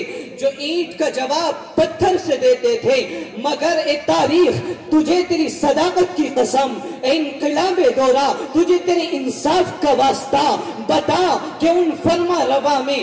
جو اینٹ کا جواب پتھر سے دیتے تھے. مگر اے تاریخ، تجھے تیری صداقت کی قسم، اے انقلاب دورہ، تجھے تیرے انصاف کا واسطہ بتا کہ ان فرما روا میں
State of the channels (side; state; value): both; identical; correlation 1.00